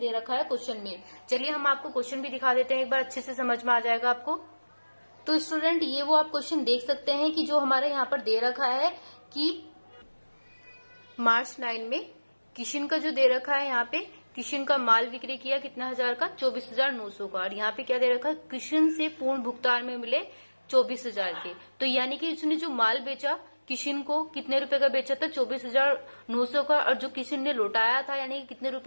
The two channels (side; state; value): both; inverted; correlation -1.00